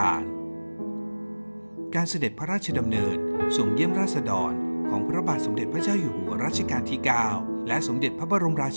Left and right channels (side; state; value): both; inverted; correlation -1.00